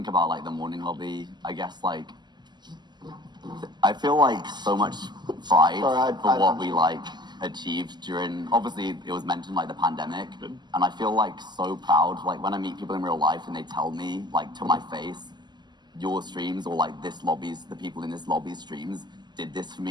about the morning lobby, I guess I feel so much pride for what we achieved during, obviously it was mentioned the pandemic, and I feel so proud when I meet people in real life and they tell me to my face your streams or like this lobby's, the people in this lobby's streams did this for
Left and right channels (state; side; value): late; left; 0.21 ms